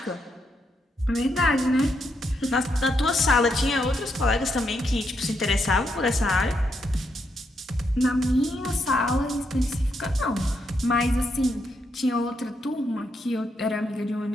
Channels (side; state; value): both; normal; correlation 0.79